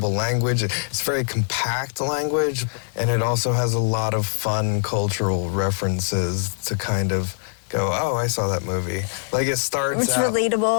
language. It's very compact language. And it also has a lot of fun cultural references to kind of go, oh, I saw that movie. Like it starts It's out...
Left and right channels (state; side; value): silent; right; 64 dB below the other